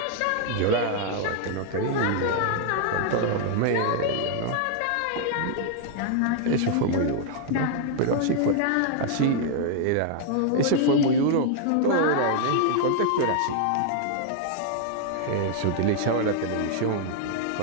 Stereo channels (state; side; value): different; both; correlation -0.01